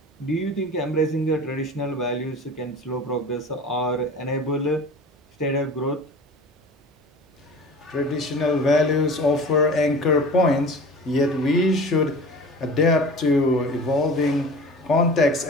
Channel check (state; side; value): normal; both; correlation 0.39